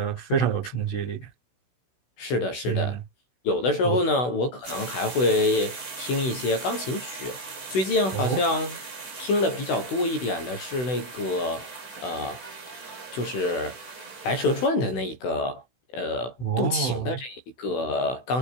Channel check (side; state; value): right; late; 16 ms